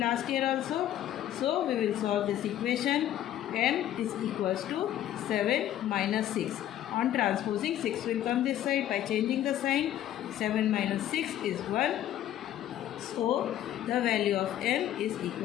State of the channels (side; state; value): right; quieter; 12.1 dB